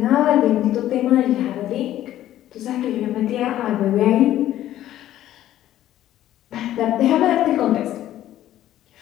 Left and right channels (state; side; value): quieter; right; 12.9 dB